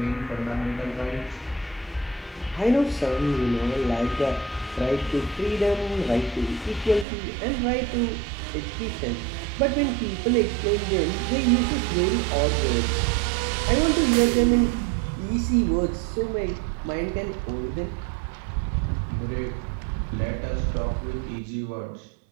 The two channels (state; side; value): drops out; left; at 7.1 s